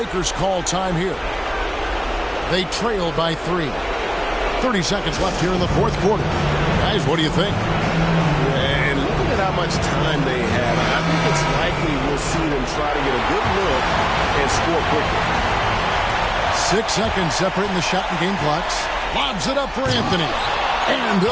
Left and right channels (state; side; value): identical; both; correlation 1.00